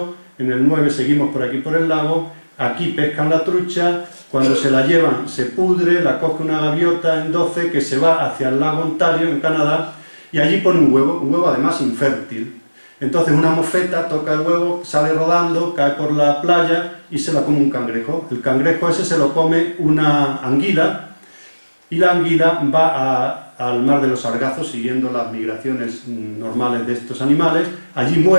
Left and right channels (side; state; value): both; inverted; correlation -1.00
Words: en el 9 seguimos por aquí por el lago, aquí pescan la trucha, cuando se la llevan se pudre, la coge una gaviota en 12 que se va hacia el lago Ontario, en Canadá, y allí pone un huevo además infértil. Entonces una mofeta toca el huevo, sale rodando, cae por la playa y se la come un cangrejo. El cangrejo ese se lo come una anguila y la anguila va al mar de los Sargazos siguiendo las migraciones normales de estos animales. Allí